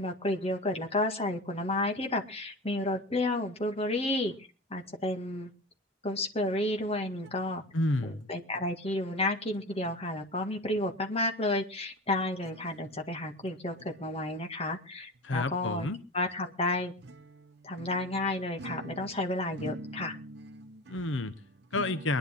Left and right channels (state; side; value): normal; both; correlation 0.31